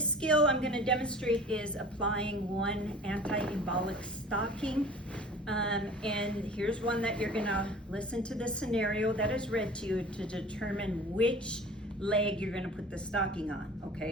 skill I'm going to demonstrate is applying one anti-embolic stocking. And here's one that you're going to listen to the scenario that is read to you to determine which leg you're going to put the stocking on.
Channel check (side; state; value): both; normal; correlation 0.43